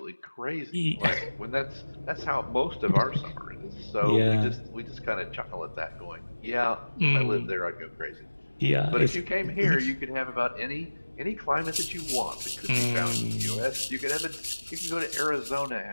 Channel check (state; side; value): inverted; both; correlation -1.00